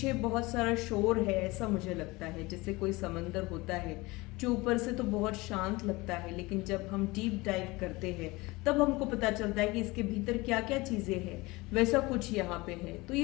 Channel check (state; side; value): quieter; right; 22.6 dB